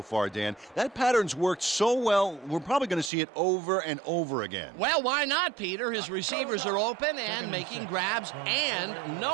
far, Dan. That pattern's worked so well, we're probably going to see it over and over again. Well, why not, Peter? His receivers are open and making grabs, and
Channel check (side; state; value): left; drops out; at 3.1 s